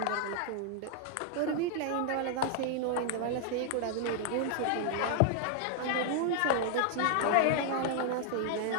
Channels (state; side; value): different; both; correlation 0.00